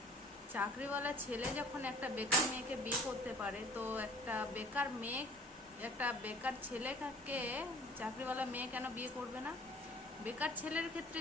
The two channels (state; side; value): normal; both; correlation 0.51